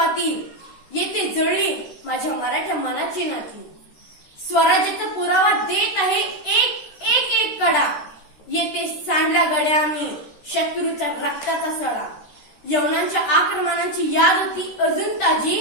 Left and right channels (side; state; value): right; late; 13 ms